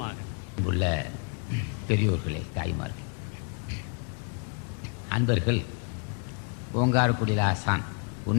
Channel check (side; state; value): right; quieter; 37.4 dB